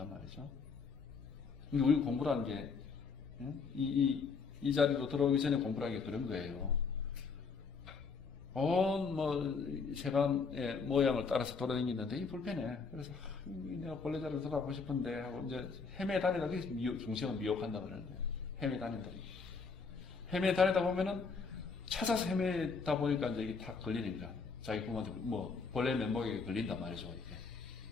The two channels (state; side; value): quieter; right; 5.0 dB